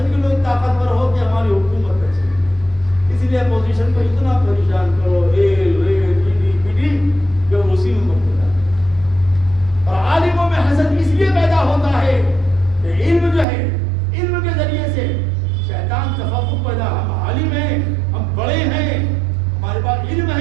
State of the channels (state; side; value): drops out; left; at 13.5 s